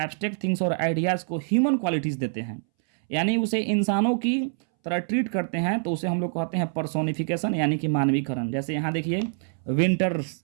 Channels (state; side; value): silent; left; 61 dB below the other